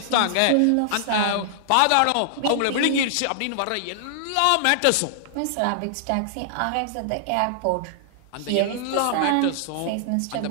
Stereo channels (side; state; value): both; different; correlation -0.01